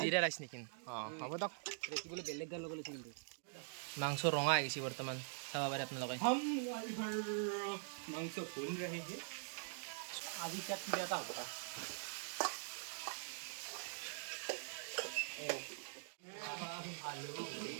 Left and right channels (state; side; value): silent; left; digital silence